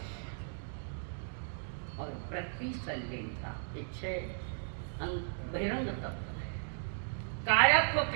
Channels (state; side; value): silent; left; digital silence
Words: और प्रतिसंलेनता, ये 6 बहिरंग तप। काया को